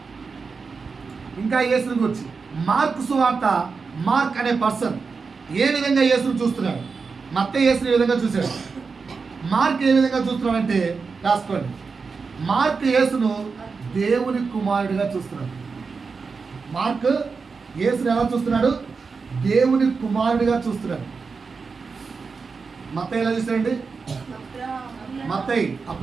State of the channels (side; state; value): left; quieter; 4.9 dB